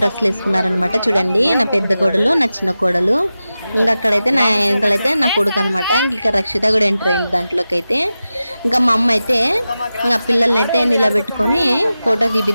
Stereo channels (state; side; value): inverted; both; correlation -0.93